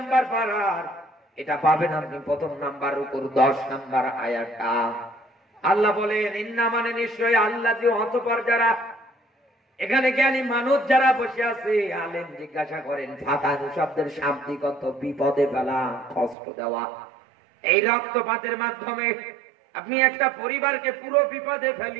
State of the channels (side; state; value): left; drops out; at 16.4 s